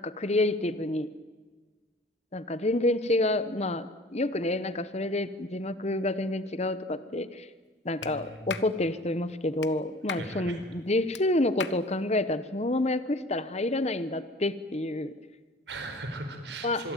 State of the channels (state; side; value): normal; both; correlation 0.46